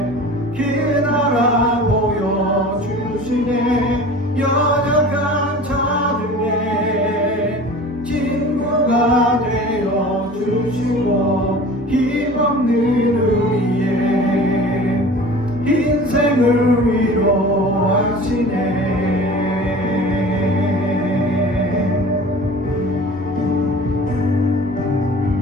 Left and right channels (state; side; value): normal; both; correlation 0.41